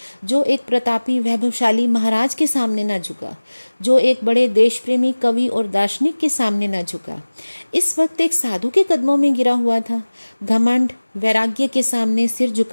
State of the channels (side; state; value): both; inverted; correlation -1.00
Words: जो एक प्रतापी वैभवशाली महाराज के सामने ना झुका, जो एक बड़े देश प्रेमी कवि और दार्शनिक के सामने ना झुका, इस वक्त एक साधु के कदमों में गिरा हुआ था। घमंड वैराग्य के सामने सिर